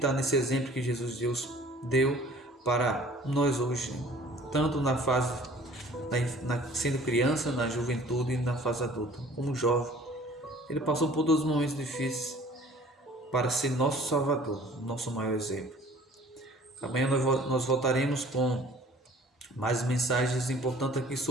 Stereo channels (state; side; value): normal; both; correlation 0.50